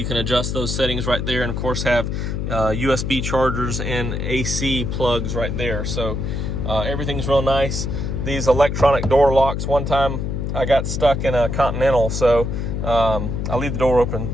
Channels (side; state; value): left; noise; hum, 2 dB below the sound